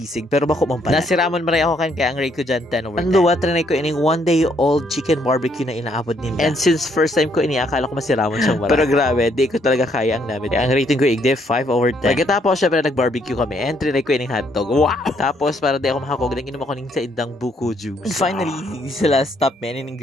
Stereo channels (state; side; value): normal; both; correlation 0.70